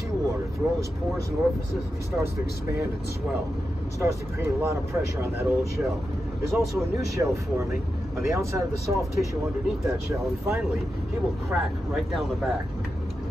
through all his pores and orifices, and he starts to expand and swell. It starts to create a lot of pressure on that old shell. There's also a new shell forming on the outside of the soft tissue underneath that shell, and finally, he will crack right down the back.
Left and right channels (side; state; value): both; normal; correlation 0.89